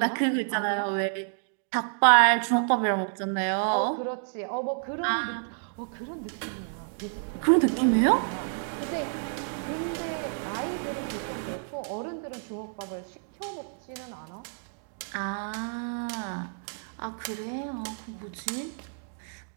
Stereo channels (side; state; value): left; silent; digital silence